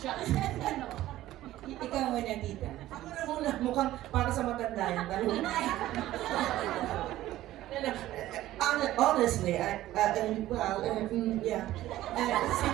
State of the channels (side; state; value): left; quieter; 14.8 dB